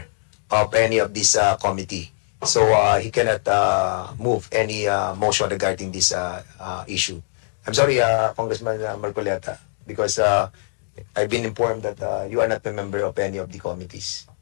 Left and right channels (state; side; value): silent; right; digital silence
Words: of any of this committee. So he cannot move any motion regarding this issue. I'm sorry, Congressman Marcoleta, because I've been informed that you are not a member of any of the committees.